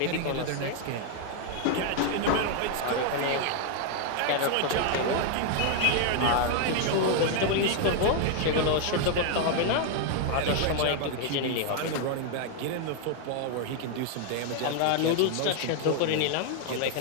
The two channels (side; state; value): both; different; correlation 0.00